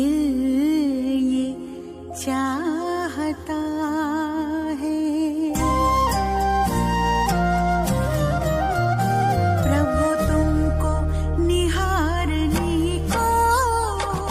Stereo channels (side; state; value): both; identical; correlation 1.00